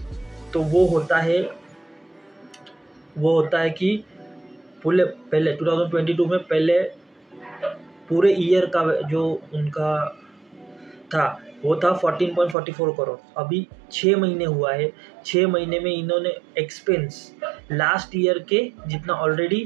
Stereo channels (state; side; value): drops out; left; at 12.6 s